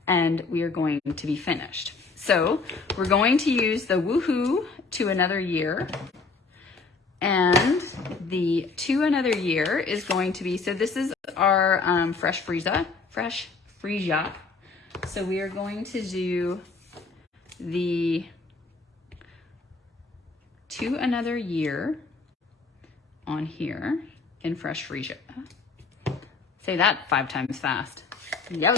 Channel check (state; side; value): quieter; right; 4.3 dB